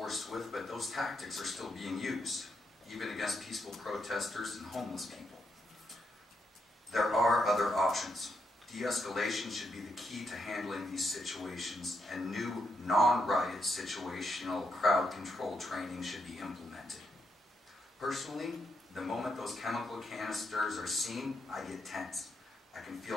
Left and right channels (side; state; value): both; normal; correlation 0.80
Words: with, but those tactics are still being used, even against peaceful protesters and homeless people. There are other options. De-escalation should be the key to handling these situations, and new non-riot situational crowd control training should be implemented. Personally, the moment those chemical canisters are seen, I get tense. I can